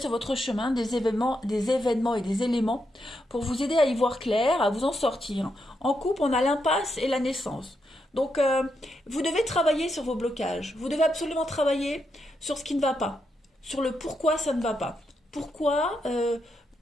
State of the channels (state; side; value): normal; both; correlation 0.82